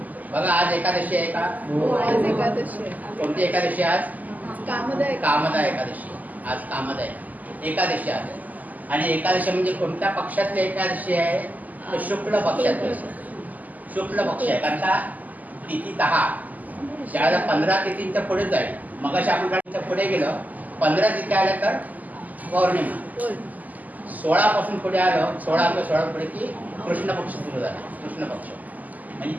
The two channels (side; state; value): left; late; 0.079 ms